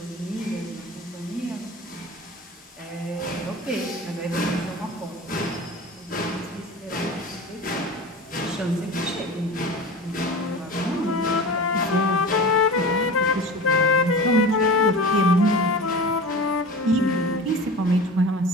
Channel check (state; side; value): normal; both; correlation 0.34